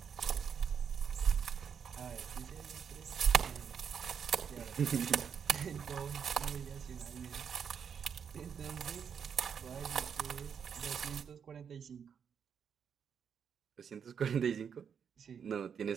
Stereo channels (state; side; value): quieter; left; 7.3 dB